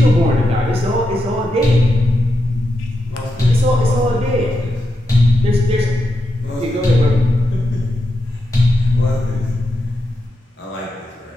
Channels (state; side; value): normal; both; correlation 0.86